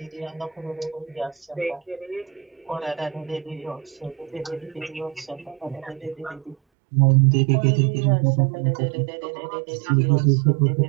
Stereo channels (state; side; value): drops out; left; at 6.6 s